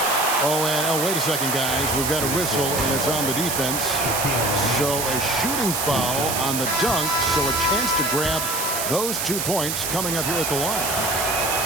Oh, wait a second, guys. We've got a whistle, and it's on the defense. So a shooting foul on the dunk, so a chance to grab those 2 points coming up here at the line.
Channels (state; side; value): noise; right; hiss, 2 dB below the sound